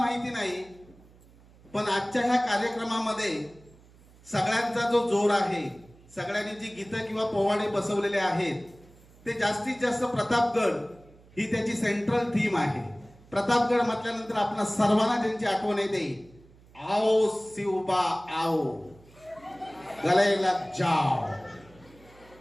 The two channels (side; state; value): right; noise; hum, 26 dB below the sound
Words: नाही, पण आजच्या ह्या कार्यक्रमामध्ये सगळ्यांचा जो जोर आहे, सगळ्यांनी जी गीतं किंवा पोवाडे बसवलेले आहेत ते जास्तीत जास्त प्रतापगड ही त्याची सेंट्रल थीम आहे। प्रतापगड म्हटल्यानंतर आपल्या सर्वांना ज्यांची आठवण येते, आओ शिवबा आओ, गले लग जाओ।